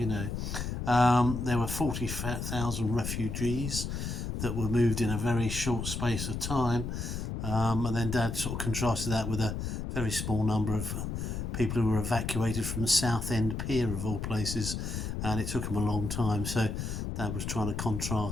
There were 40,000 refugees that were moved in a very short space of time, and then Dad sort of contrasted that with a very small number of people who were evacuated from the Southend Pier of all places, and it took them a long time. So Dad was trying to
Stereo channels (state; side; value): noise; left; rumble, 4 dB below the sound